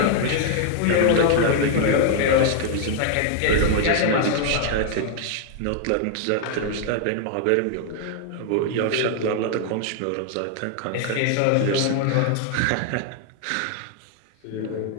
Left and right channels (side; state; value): both; different; correlation 0.00